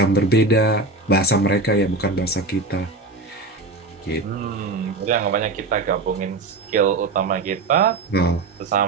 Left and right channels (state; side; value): quieter; left; 3.3 dB